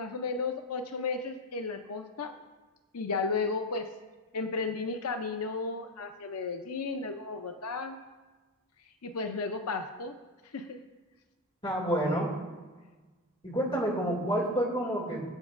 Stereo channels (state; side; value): normal; both; correlation 0.17